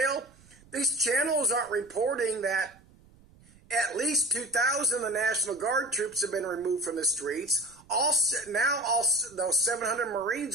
These channels aren't reporting that at least 2,000 of the National Guard troops have been removed from the streets. Now those 700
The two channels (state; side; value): noise; right; rumble, 27 dB below the sound